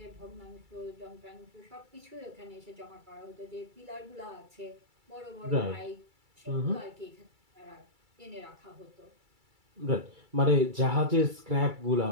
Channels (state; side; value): late; left; 2.3 ms